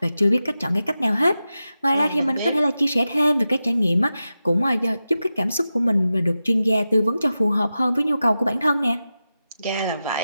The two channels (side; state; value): both; inverted; correlation -0.92